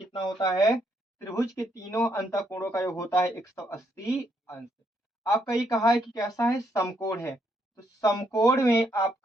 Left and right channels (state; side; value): normal; both; correlation 0.74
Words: होता है? त्रिभुज के तीनों अंतःकोणों का योग होता है 180 अंश। आपका ये कहा है कि कैसा है? समकोण है। तो समकोण में